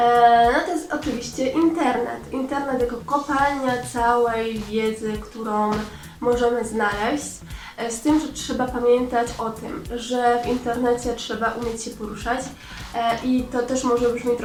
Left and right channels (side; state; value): both; identical; correlation 1.00